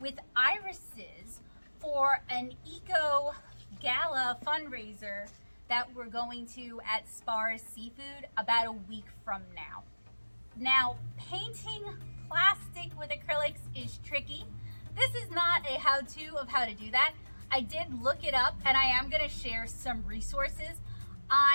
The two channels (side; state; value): both; inverted; correlation -1.00